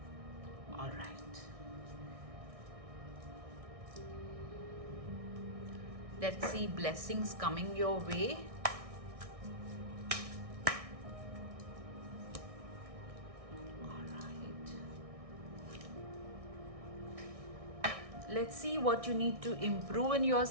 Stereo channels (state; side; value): late; left; 1.6 ms